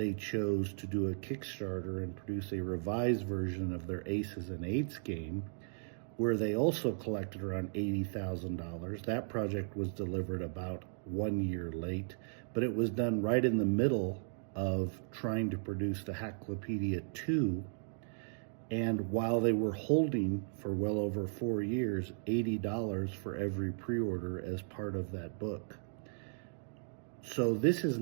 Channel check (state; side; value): silent; left; digital silence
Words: chose to do a Kickstarter and produce a revised version of their Aces and Eights game, where they also collected around $80,000. That project was delivered about 1 year late, but it was done right in the middle of trying to produce the Hacklopedia 2. And while they were holding for well over 4 years, $80 for every pre-order as part of that book. So this is